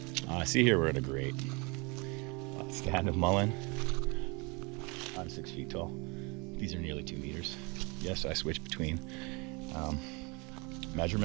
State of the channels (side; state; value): left; quieter; 29.1 dB